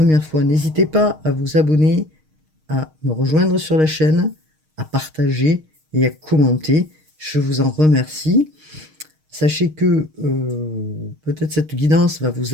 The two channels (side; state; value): left; late; 6.4 ms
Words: fois, n'hésitez pas à vous abonner, à me rejoindre sur la chaîne, à partager et à commenter. Je vous en remercie. Sachez que peut-être cette guidance va vous